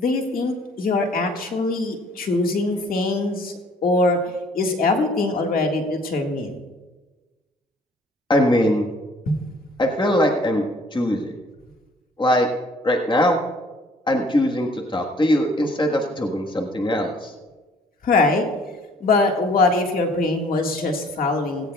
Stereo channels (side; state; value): both; normal; correlation 0.57